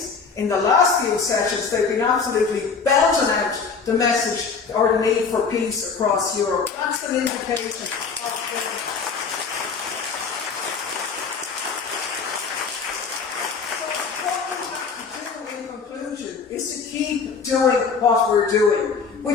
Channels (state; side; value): quieter; right; 5.3 dB